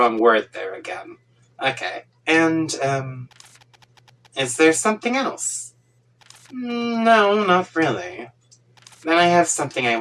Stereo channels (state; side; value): identical; both; correlation 1.00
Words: word there again. Okay. And, is there something else? No, not really. Then I have something I